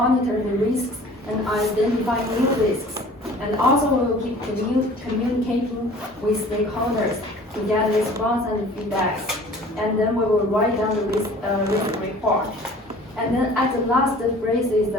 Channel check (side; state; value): both; normal; correlation 0.47